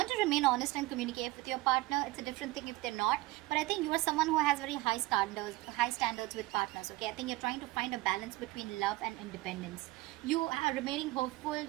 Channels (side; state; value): left; quieter; 20.3 dB